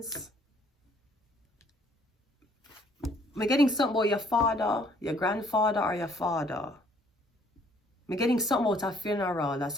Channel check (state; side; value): normal; both; correlation 0.62